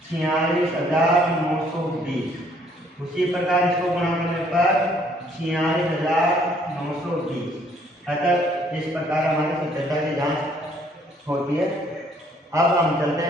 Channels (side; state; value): both; normal; correlation 0.64